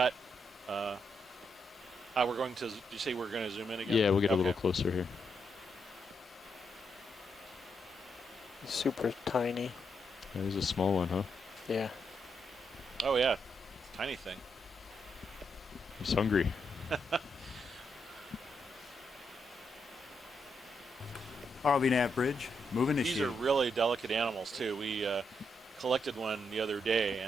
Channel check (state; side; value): normal; both; correlation 0.80